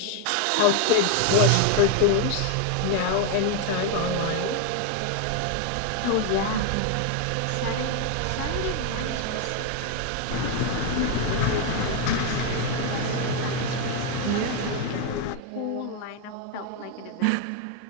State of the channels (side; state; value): both; different; correlation 0.01